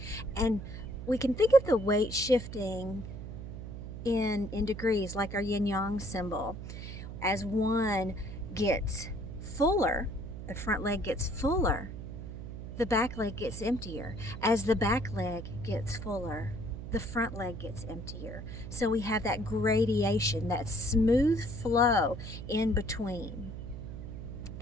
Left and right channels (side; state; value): right; noise; hum, 9 dB below the sound